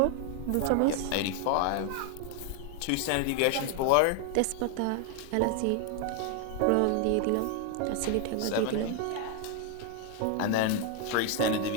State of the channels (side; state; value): both; different; correlation 0.01